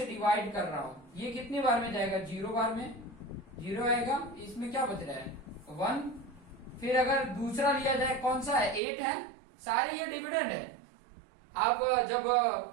डिवाइड कर रहा हूं, ये कितनी बार में जाएगा? 0 बार में, 0 आएगा। इसमें क्या बच रहा है? 1। फिर अगर दूसरा लिया जाए, कौन सा है? 8 है। सारे ये डिविडेंड है। आप जब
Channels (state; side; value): drops out; left; at 8.8 s